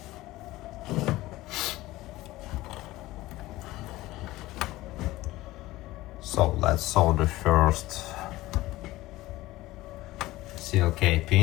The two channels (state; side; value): quieter; right; 17.8 dB